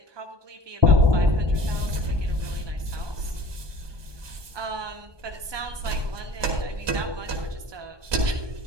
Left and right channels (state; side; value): late; left; 1.2 ms